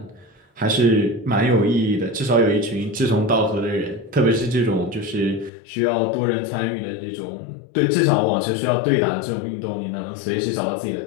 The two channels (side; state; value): right; drops out; at 5.5 s